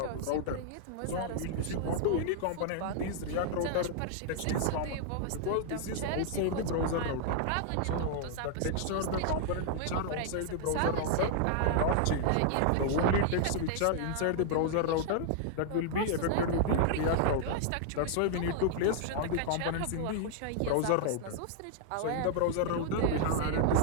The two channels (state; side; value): different; both; correlation -0.01